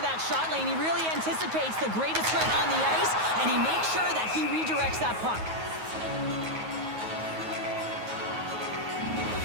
that shot lane. He really anticipates the greatest threat on the ice, and he makes sure that he redirects that puck.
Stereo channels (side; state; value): left; late; 9.4 ms